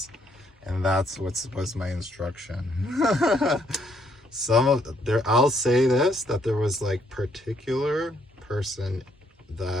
and that's what was my instruction. I'll say this, that there was like particular person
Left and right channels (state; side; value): normal; both; correlation 0.71